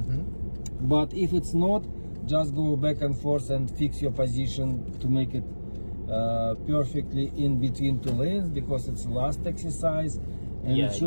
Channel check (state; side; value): inverted; both; correlation -1.00